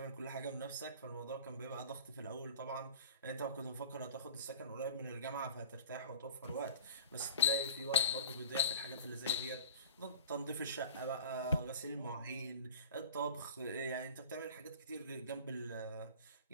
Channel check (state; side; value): inverted; both; correlation -0.41